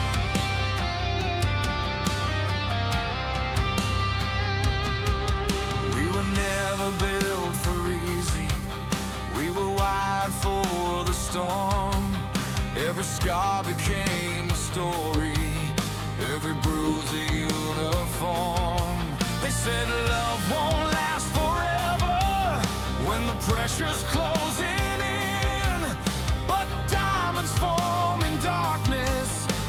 Never built for easy, we were wired for the storm. Every scar became a story, every bruise a uniform. They said love won't last forever when the pressure's closing in, but diamonds form in darkness,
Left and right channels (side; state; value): both; identical; correlation 1.00